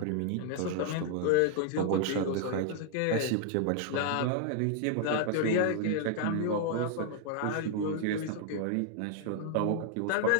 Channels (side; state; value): both; different; correlation 0.00